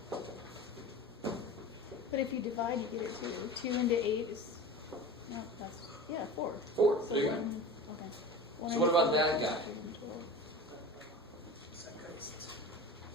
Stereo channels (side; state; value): both; normal; correlation 0.34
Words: But if you divide, you get it too. 2 into 8 is, no, that's, 4. 4. So There you go. 1, okay. So what about that guy?